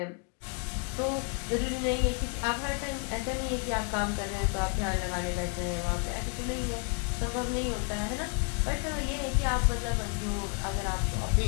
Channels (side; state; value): right; quieter; 37.4 dB